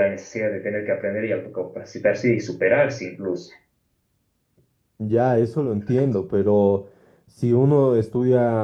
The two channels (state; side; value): identical; both; correlation 1.00